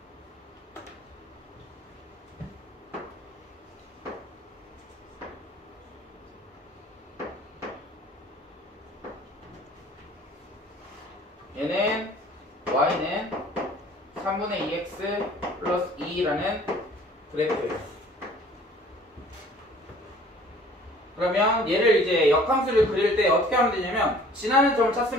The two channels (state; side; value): normal; both; correlation 0.52